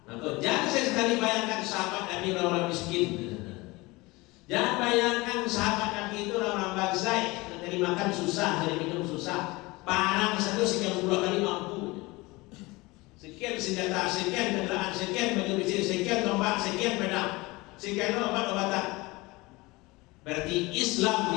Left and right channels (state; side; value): quieter; right; 22.7 dB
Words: Maka jangan sekali bayangkan sahabat Nabi orang miskin. Jangan bayangkan sahabat Nabi itu orang bagsai, dari makan susah, dari minum susah. Perang satu sekian puluh kali mampu. Sekian senjata, sekian kendaraan, sekian baju besi, sekian tombak, sekian pedang, sekian obat-obatan. Berarti Islam